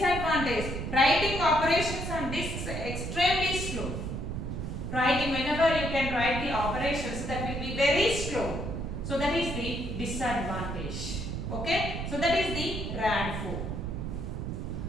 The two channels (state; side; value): noise; right; rumble, 4 dB below the sound